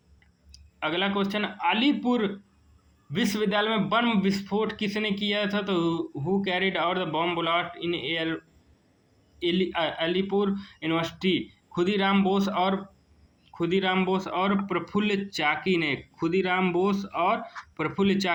क्वेश्चन अलीपुर विश्वविद्यालय में बम विस्फोट किसने किया था? तो who carried out the bomb blast in Alipur university? Khudiram Bose और प्रफुल्ल चाकी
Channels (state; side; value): identical; both; correlation 1.00